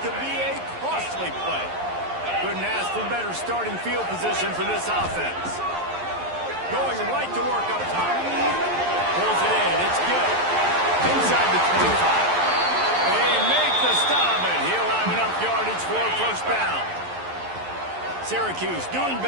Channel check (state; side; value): late; left; 11 ms